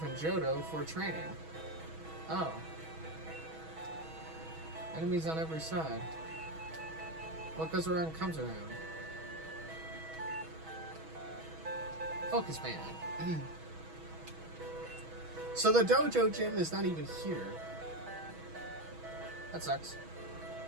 in Johto for training. Oh. Enemies on every side. What goes around comes around. Focus man. So the dojo gym is not even here. That sucks.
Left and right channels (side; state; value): left; late; 6.2 ms